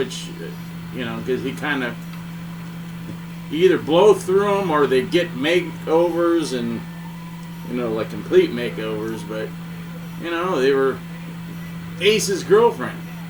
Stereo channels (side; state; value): both; identical; correlation 1.00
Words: because he kind of either blow through them or they get makeovers and, like complete makeovers, but, they were Ace's girlfriend.